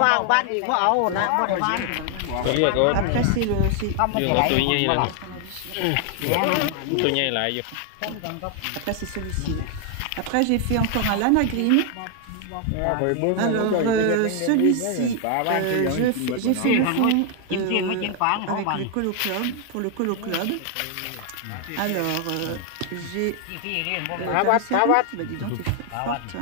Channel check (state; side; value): different; both; correlation 0.00